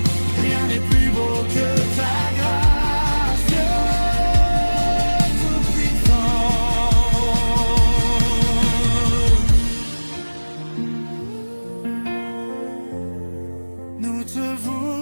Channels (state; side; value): inverted; both; correlation -1.00